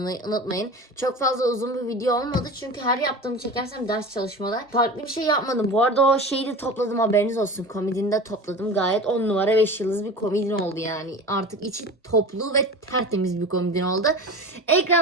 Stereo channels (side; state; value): both; normal; correlation 0.33